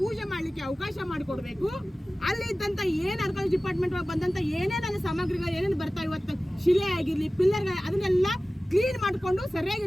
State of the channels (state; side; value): normal; both; correlation 0.97